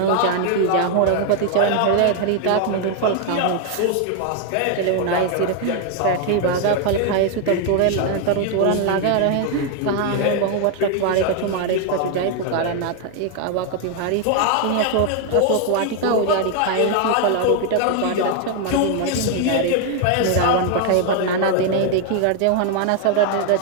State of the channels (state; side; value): different; both; correlation 0.00